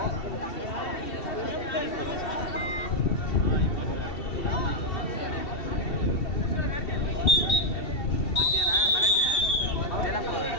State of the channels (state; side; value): late; right; 2.7 ms